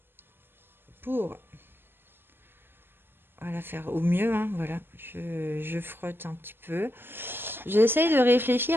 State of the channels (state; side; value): late; left; 0.10 ms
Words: pour voilà, faire au mieux. Hein, voilà, je frotte un petit peu. J'essaye de